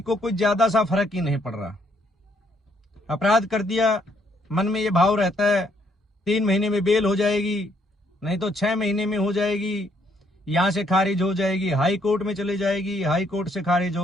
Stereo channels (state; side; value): normal; both; correlation 0.70